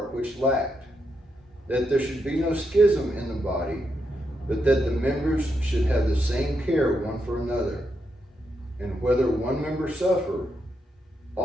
which lacked, that there should be no schism in the body, but that the members should have the same care one for another. And whether one member suffer,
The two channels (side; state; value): both; normal; correlation 0.82